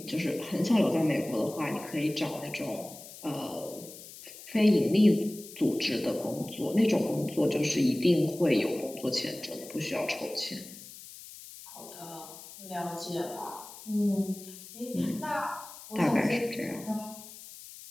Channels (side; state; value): left; noise; hiss, 16 dB below the sound